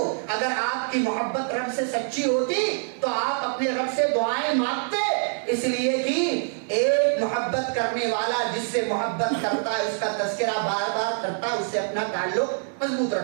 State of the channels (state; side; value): silent; left; 57 dB below the other